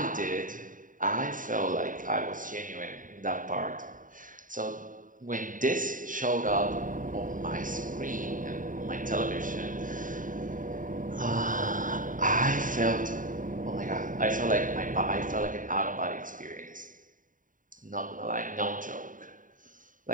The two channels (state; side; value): late; left; 0.39 ms